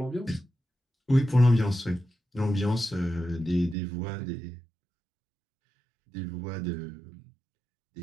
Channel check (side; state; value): left; drops out; at 3.8 s